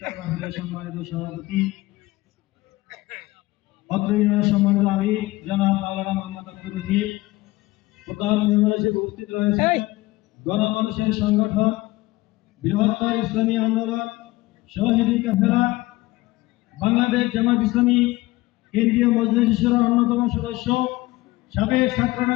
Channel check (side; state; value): right; quieter; 19.3 dB